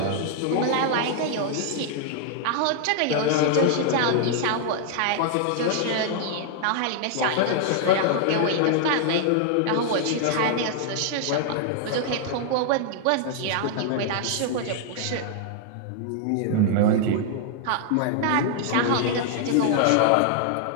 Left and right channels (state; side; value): different; both; correlation 0.00